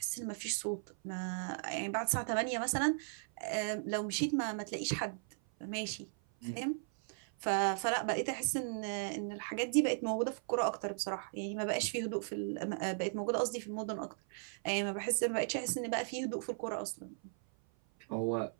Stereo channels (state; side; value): silent; left; 53 dB below the other